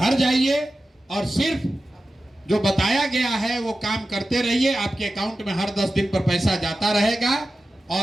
जाइए और सिर्फ जो बताया गया है वो काम करते रहिए। आपके अकाउंट में हर 10 दिन पर पैसा जाता रहेगा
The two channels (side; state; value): both; normal; correlation 0.94